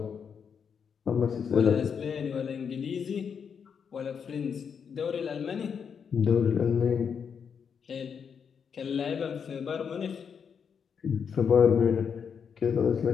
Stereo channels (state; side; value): quieter; right; 6.8 dB